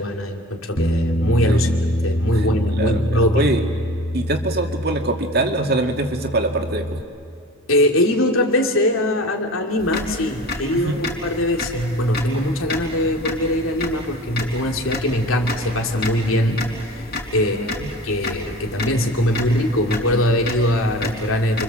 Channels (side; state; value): both; normal; correlation 0.38